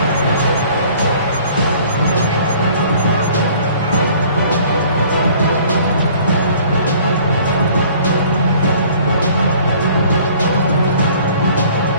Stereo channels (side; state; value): both; inverted; correlation -0.53